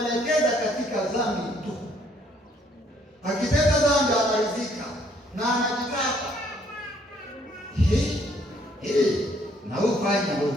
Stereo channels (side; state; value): both; normal; correlation 0.65